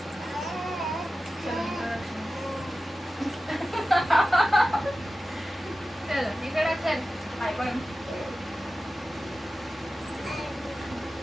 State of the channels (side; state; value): both; normal; correlation 0.94